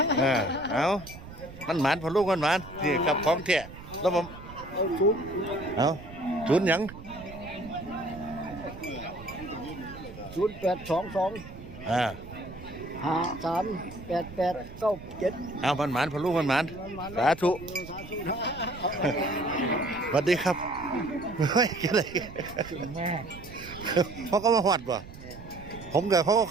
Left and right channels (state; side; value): noise; right; rumble, 15 dB below the sound